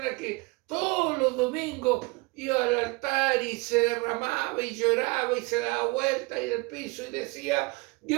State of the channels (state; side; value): quieter; left; 26.3 dB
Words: que todos los domingos iba al altar y se derramaba y lloraba y se daba vuelta y del piso y decía,